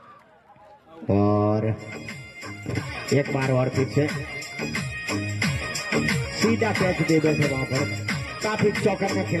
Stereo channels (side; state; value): both; identical; correlation 1.00